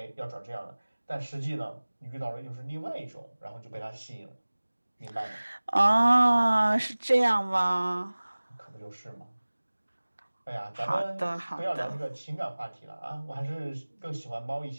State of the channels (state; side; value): inverted; both; correlation -1.00